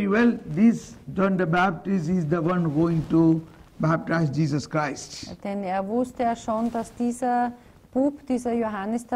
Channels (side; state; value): both; identical; correlation 1.00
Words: well this John the Baptist is the one going to baptize Jesus Christ. Denn er wusste ja schon, dass dieser Bub, dieser Johannes